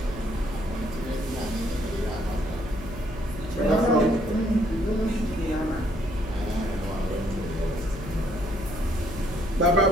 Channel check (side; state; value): left; noise; hum, 12 dB below the sound